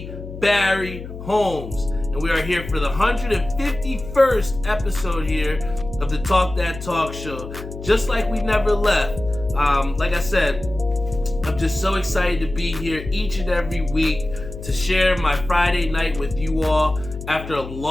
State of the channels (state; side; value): noise; left; hum, 11 dB below the sound